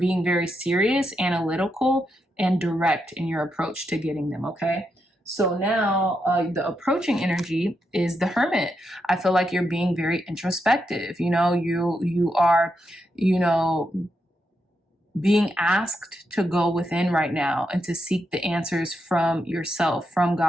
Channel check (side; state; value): both; normal; correlation 0.83